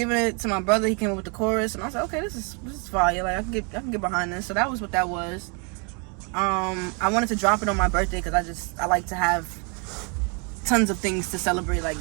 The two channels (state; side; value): quieter; left; 35.5 dB